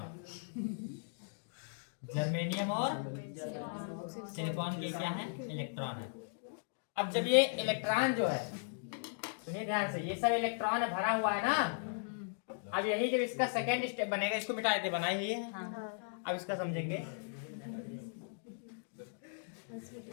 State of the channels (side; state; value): right; silent; digital silence